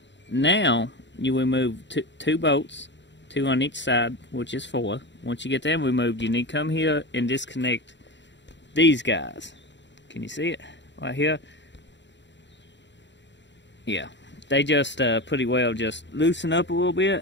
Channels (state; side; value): late; right; 0.52 ms